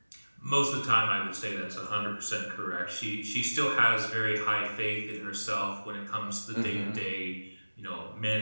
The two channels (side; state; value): both; inverted; correlation -1.00